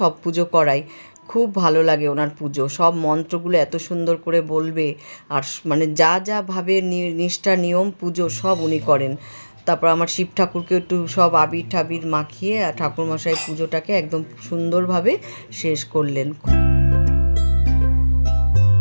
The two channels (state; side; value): inverted; both; correlation -1.00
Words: পুজো করাই, খুব ভালো লাগে ওনার পুজো। সব মন্ত্রগুলো এত সুন্দর করে বলবে, আর মানে যা যা ভাবে নিষ্ঠা নিয়ম পুজো সব উনি করেন। তারপর আমার শিব ঠাকুরকে একটু সব আবির ঠাবির মাখিয়ে আর ঠাকুরমশাই পুজোটাকে একদম সুন্দরভাবে শেষ করলেন।